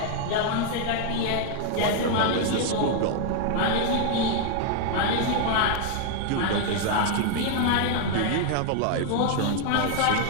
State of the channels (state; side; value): different; both; correlation 0.00